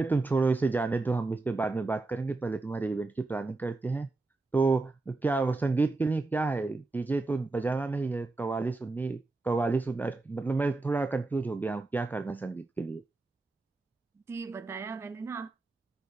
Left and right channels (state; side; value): quieter; left; 3.3 dB